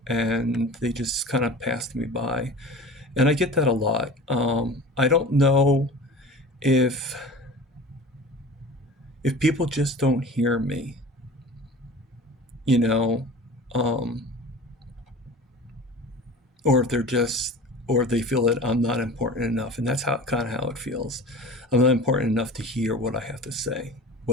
and they just kind of passed me by. And I get that a lot. I don't know if people just don't hear me, you know, um, or if they feel that I'm not important enough, and that's how it feels. I'm not important enough to hear what I have to say,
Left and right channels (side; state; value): both; normal; correlation 0.38